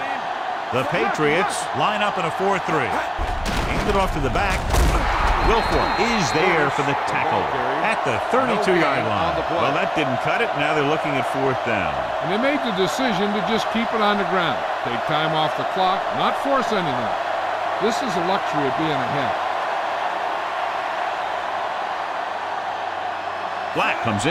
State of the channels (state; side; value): identical; both; correlation 1.00